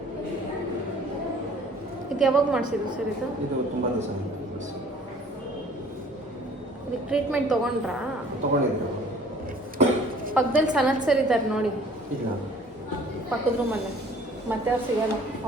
ಇದು ಯಾವಾಗ ಮಾಡಿಸಿದ್ದು ಸರ್ ಇದು? ಇದು ತುಂಬ ದಿವಸ ಇದಕ್ಕೆ ಟ್ರೀಟ್ಮೆಂಟ್ ತೊಗೊಂಡ್ರಾ? ತೊಗೊಂಡಿದ್ರು. ಪಕ್ಕದಲ್ಲಿ ಸನತ್ ಸರ್ ಇದ್ದಾರೆ ನೋಡಿ, ಇಲ್ಲ ಪಕ್ಕದ ರೂಮಲ್ಲೇ. ಮತ್ತೆ ಅವ್ರು ಸಿಗಲ್ಲ,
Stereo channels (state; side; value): normal; both; correlation 0.52